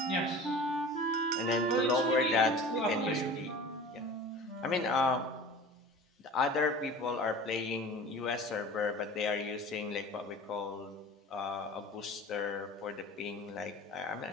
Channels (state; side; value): normal; both; correlation 0.39